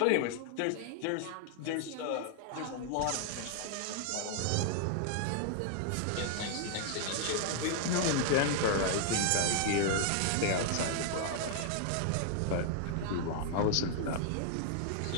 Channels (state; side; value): different; both; correlation 0.00